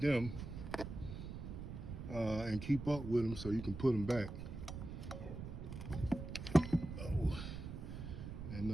and keep up with them so you can put them back. Oh,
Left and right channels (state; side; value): noise; right; rumble, 8 dB below the sound